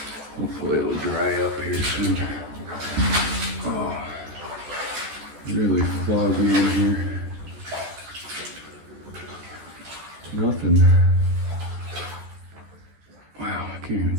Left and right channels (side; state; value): left; late; 14 ms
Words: Hopefully it'll dry up here soon. Oh, really foggy in here. Nothing. Wow, I can't even